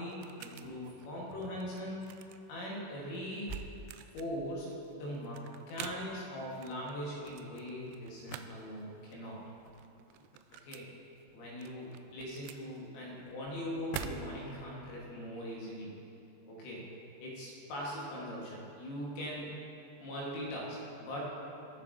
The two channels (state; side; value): late; right; 21 ms